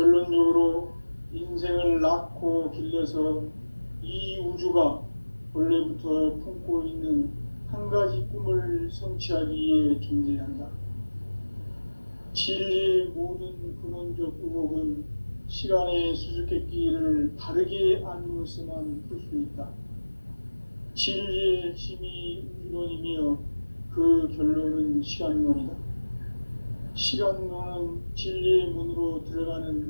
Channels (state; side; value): inverted; both; correlation -1.00